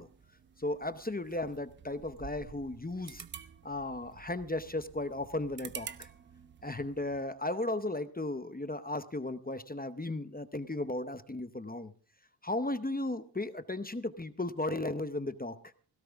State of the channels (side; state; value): both; normal; correlation 0.39